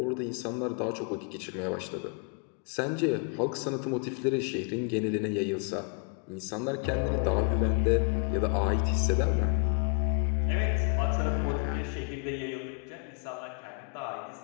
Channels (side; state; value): right; quieter; 38.1 dB